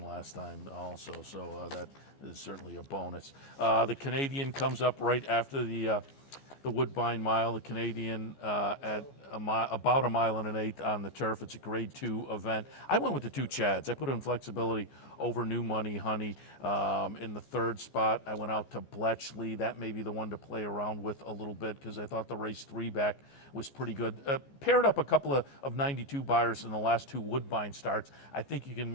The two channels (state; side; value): late; right; 14 ms